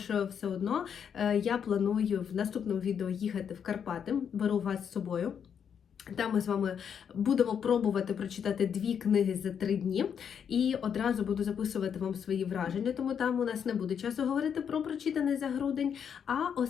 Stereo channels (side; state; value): right; quieter; 7.7 dB